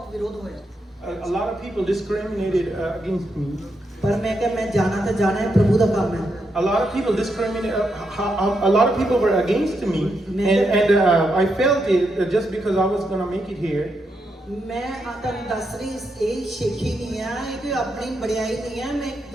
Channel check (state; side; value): normal; both; correlation 0.82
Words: ਵਿਰੋਧ ਹੋਇਆ A lot of people discriminated against me. ਪਰ ਮੈਂ ਕਿਹਾ ਮੈਂ ਜਾਣਾ ਤਾਂ ਜਾਣਾ ਹੈ ਪ੍ਰਭੂ ਦਾ ਕੰਮ ਹੈ A lot of people discriminated. A lot of people were against me, and I felt it just because I was gonna make it here. ਮੈਂ ਤੁਹਾਨੂੰ ਦੱਸ ਰਹੀ ਇਹ ਸ਼ੇਖੀ ਨਹੀਂ ਆ ਇਹ ਕੋਈ ਆਪਣੀ ਬੜਾਈ ਨਹੀਂ ਹੈ ਮੈਂ ਇੱਕ